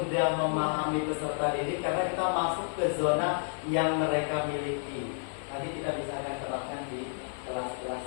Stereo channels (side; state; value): right; silent; digital silence